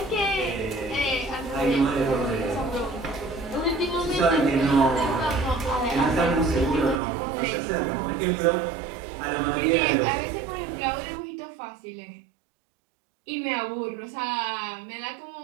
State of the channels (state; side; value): drops out; left; at 7.0 s